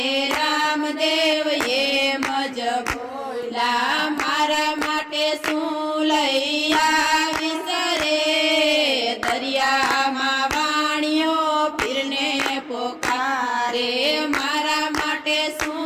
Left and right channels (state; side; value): identical; both; correlation 1.00